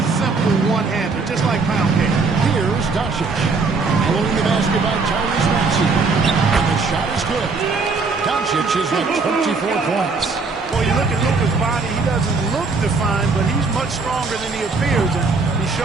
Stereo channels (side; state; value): left; quieter; 4.2 dB